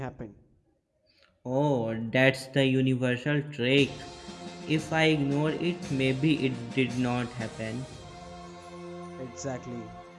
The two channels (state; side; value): identical; both; correlation 1.00